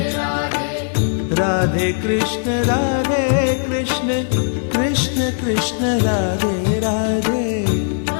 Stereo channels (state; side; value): silent; right; 67 dB below the other